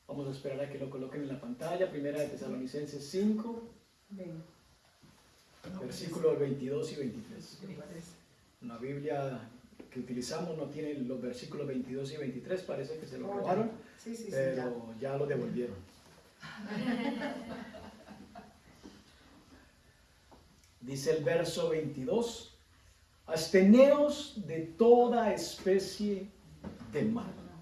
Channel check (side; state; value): both; identical; correlation 1.00